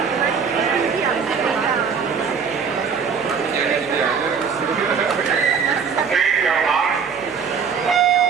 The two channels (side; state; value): left; quieter; 6.2 dB